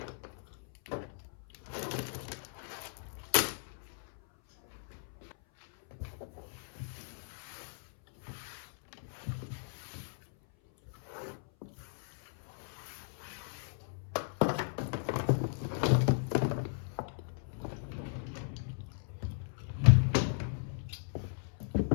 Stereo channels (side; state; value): right; silent; 54 dB below the other